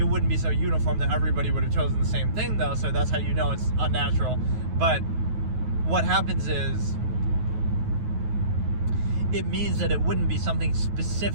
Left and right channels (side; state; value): left; late; 9.4 ms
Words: wouldn't be so uniform that everybody would have chosen the same thing, though, so that's how you know it's unnatural. But what happens is, it means that it wouldn't be something